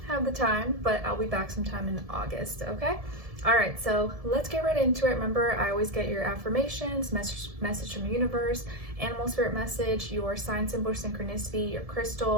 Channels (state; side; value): late; left; 1.7 ms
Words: have the time, but I'll be back sometime in August. Okay, all right, so let's get right into it. Remember, I always get your affirmations, message from the universe, animal spirit message, your sign, symbol, synchronicity, your